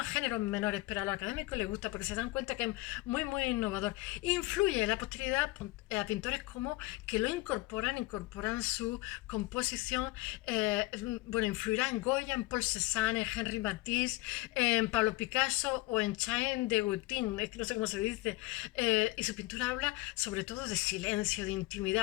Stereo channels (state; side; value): quieter; right; 20.6 dB